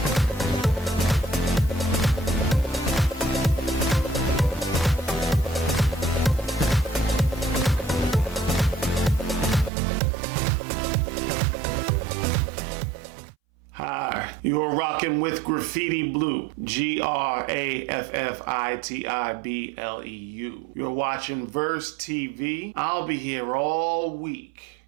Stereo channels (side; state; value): left; drops out; at 9.7 s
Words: Hi, you're rocking with Graffiti Bleu, GRAFFITIBLEU. You're watching Verse TV. I'll be here all week.